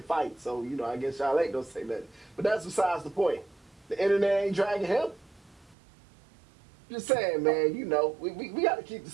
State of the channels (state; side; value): drops out; left; at 5.8 s